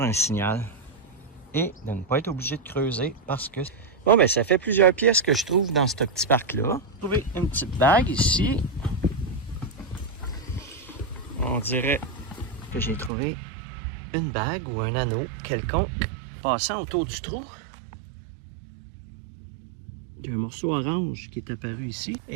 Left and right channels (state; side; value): drops out; left; at 13.1 s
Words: un signal et de ne pas être obligé de creuser parce que... Bon, ben ça fait plusieurs pièces que je trouve dans ce petit parc-là. J'ai trouvé une petite bague ici. On dirait que j'ai trouvé une bague ou un anneau quelconque passant autour du trou. Il y a un morceau orange qui est apparu ici